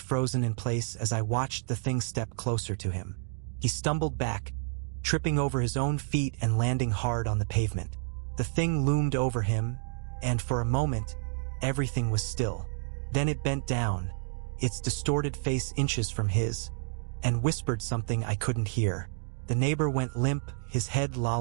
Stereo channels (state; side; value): silent; left; digital silence